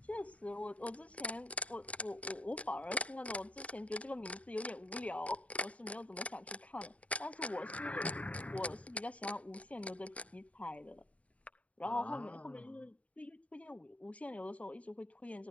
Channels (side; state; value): right; late; 0.066 ms